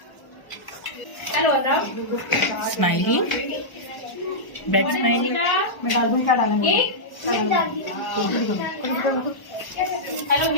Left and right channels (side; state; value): right; late; 1.1 ms